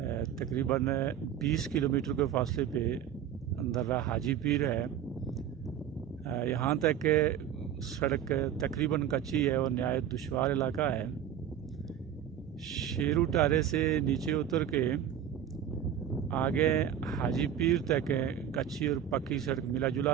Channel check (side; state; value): left; quieter; 9.6 dB